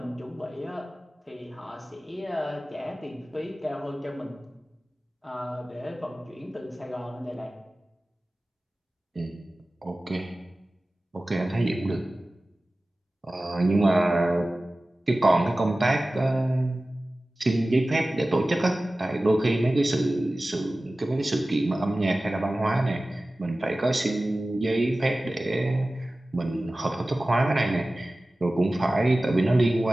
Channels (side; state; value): both; normal; correlation 0.97